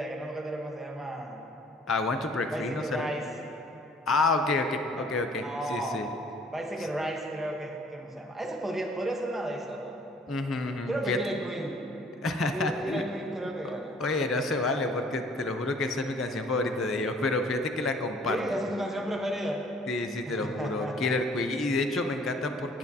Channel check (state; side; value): normal; both; correlation 0.57